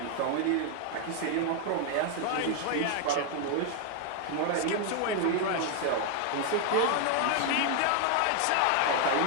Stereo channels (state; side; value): different; both; correlation 0.01